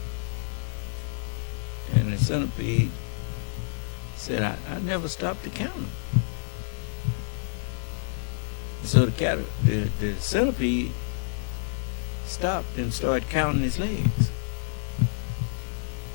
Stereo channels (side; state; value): right; silent; digital silence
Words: And the centipede said, I never stopped to count them. So the centipede stopped and started counting his legs.